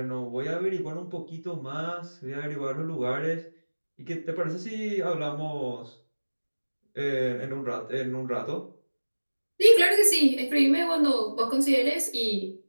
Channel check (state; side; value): inverted; both; correlation -1.00